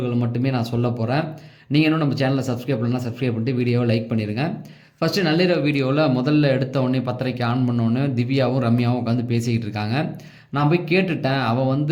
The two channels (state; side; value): identical; both; correlation 1.00